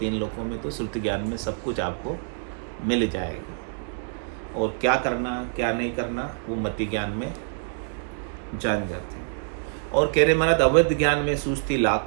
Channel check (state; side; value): silent; left; digital silence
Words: लोकों में, तो श्रुति ज्ञान में सब कुछ आपको मिल जाएगा। और क्या करना क्या नहीं करना वो मति ज्ञान में जान जाते हैं। और कह रहे महाराज अवध ज्ञान में सूझती